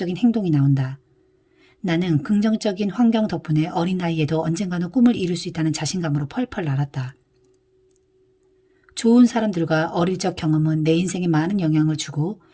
행동이 나온다. 나는 긍정적인 환경 덕분에 어린 나이에도 언젠가는 꿈을 이룰 수 있다는 자신감으로 펄펄 날았다. 좋은 사람들과 어릴 적 경험은 내 인생에 많은 영향을 주고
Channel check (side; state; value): both; identical; correlation 1.00